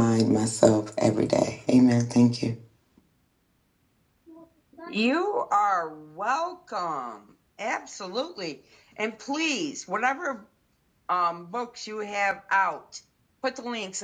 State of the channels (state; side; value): identical; both; correlation 1.00